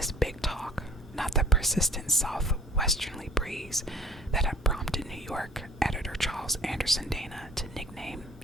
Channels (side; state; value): both; normal; correlation 0.53